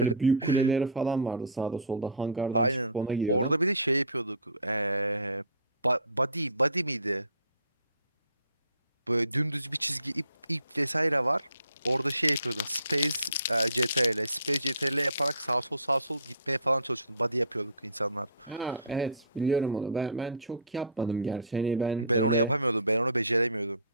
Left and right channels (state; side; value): inverted; both; correlation -0.44